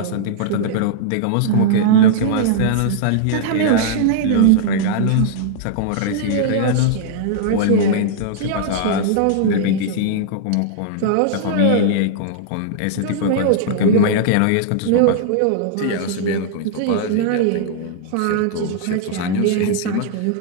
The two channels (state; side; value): different; both; correlation -0.01